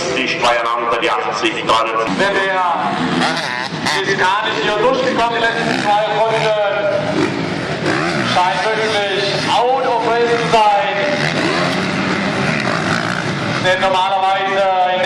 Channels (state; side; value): identical; both; correlation 1.00